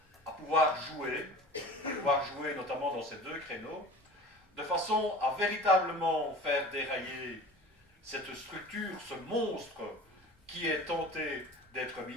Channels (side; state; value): both; normal; correlation 0.39